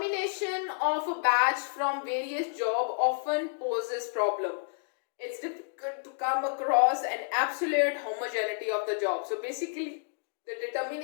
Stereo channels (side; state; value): right; silent; digital silence